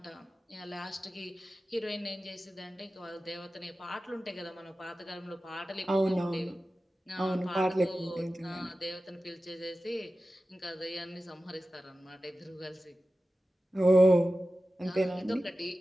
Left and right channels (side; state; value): both; normal; correlation 0.94